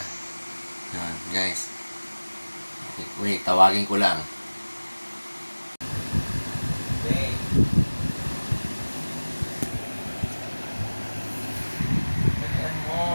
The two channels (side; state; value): both; inverted; correlation -1.00